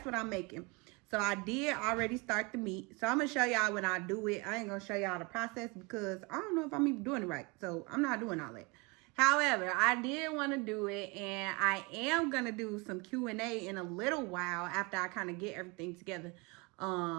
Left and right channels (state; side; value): quieter; left; 28.1 dB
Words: what I'm making. So I did already start the meat. So I'm going to show y'all when I do it. I ain't going to show y'all the process because I don't know if I'm even doing it right. So I'm not doing all that. However, I did want to do it, and I am going to do some Q&A in a little while after I kind of get everything together.